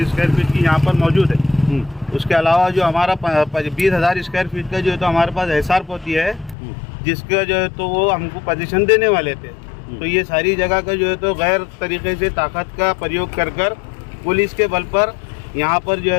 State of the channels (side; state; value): right; drops out; at 6.6 s